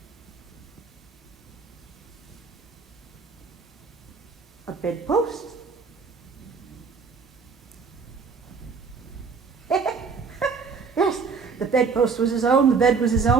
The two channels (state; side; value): quieter; left; 5.2 dB